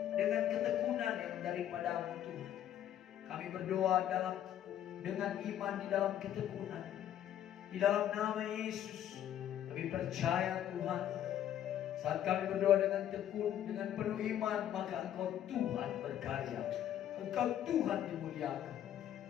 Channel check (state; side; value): quieter; right; 11.0 dB